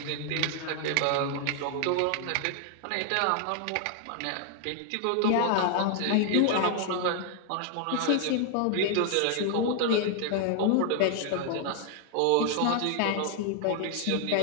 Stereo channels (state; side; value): different; both; correlation 0.00